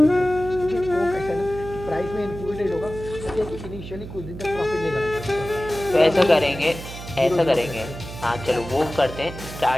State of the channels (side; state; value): right; noise; hum, 11 dB below the sound